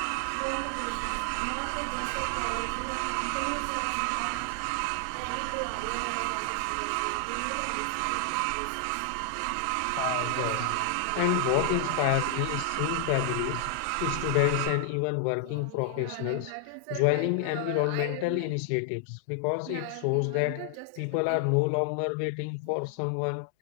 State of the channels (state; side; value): different; both; correlation 0.00